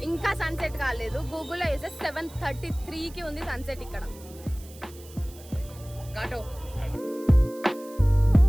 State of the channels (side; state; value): right; noise; hiss, 21 dB below the sound